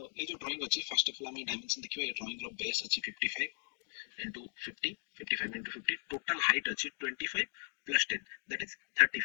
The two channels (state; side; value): silent; right; digital silence